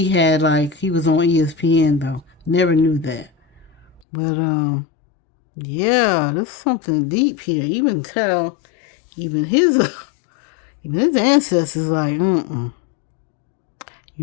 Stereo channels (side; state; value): right; drops out; at 4.0 s